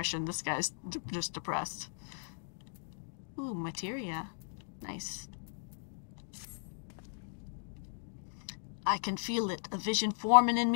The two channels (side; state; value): right; silent; digital silence